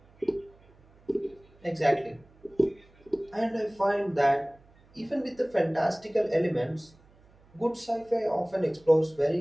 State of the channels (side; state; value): right; noise; hum, 29 dB below the sound